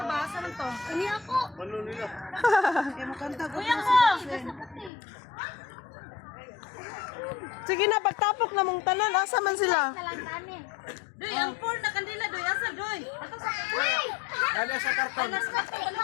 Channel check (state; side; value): drops out; right; at 4.9 s